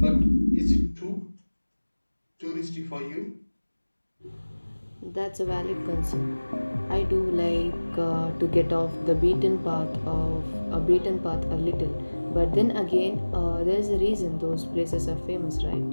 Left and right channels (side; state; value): both; inverted; correlation -1.00